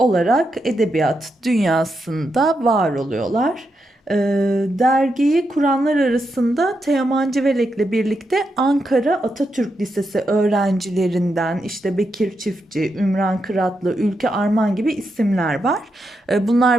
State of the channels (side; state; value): both; normal; correlation 0.84